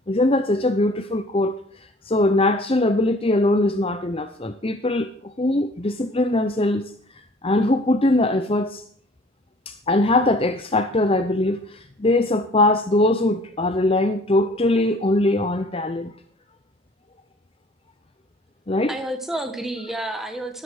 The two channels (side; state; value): both; normal; correlation 0.52